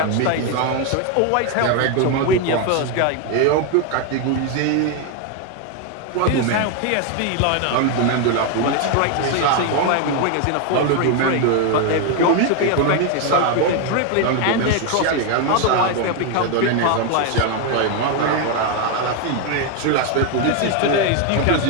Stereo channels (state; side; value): different; both; correlation 0.01